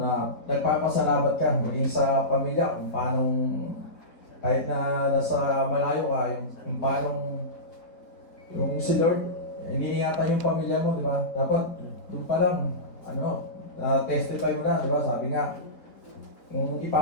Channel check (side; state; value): right; late; 4.0 ms